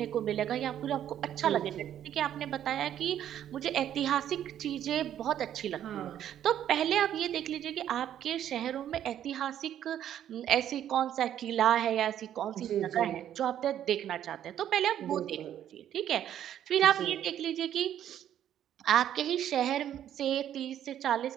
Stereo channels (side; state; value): left; quieter; 10.7 dB